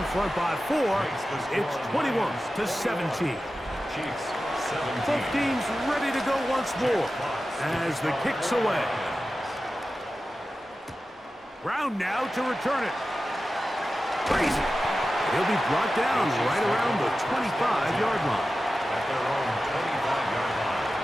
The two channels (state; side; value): normal; both; correlation 0.94